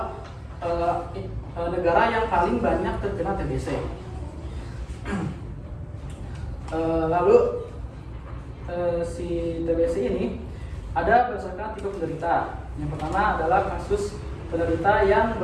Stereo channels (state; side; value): identical; both; correlation 1.00